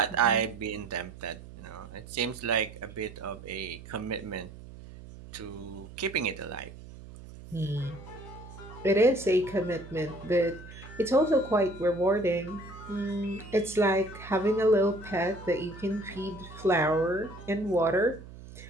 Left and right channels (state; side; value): noise; right; hum, 16 dB below the sound